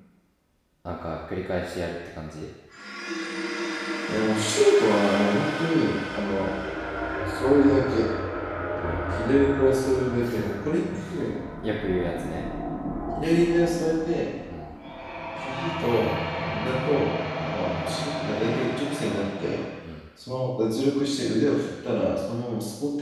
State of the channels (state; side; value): identical; both; correlation 1.00